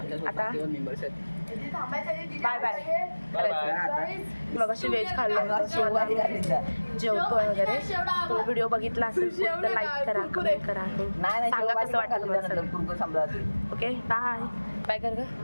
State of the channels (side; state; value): both; inverted; correlation -1.00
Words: आता बाय बाय. मग अशी व्हेज खाल्लं जेवतो वगैरे. तो व्हिडिओ बघितला असेल तर लाईक करा, कमेंट करा, सांगा कसं वाटलं. Okay bye. बाय कर